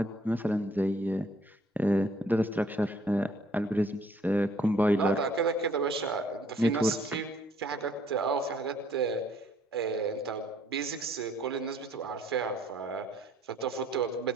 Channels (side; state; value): both; normal; correlation 0.62